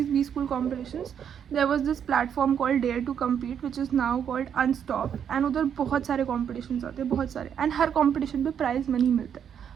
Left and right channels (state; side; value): quieter; left; 8.4 dB